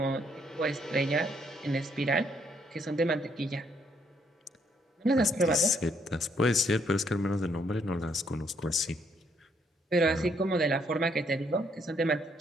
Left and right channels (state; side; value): normal; both; correlation 0.71